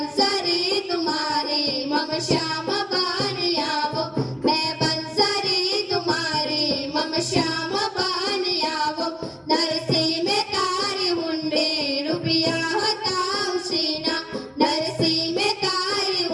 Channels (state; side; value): identical; both; correlation 1.00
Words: तुम्हारी मम श्याम बानी आवो मैं बंसरी तुम्हारी मम श्याम बानी आवो नरसी में तारी हुंडे रुपया हताव सीना नरसी में तारी